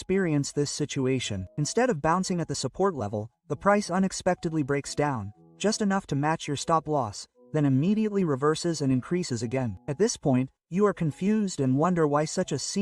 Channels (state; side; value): identical; both; correlation 1.00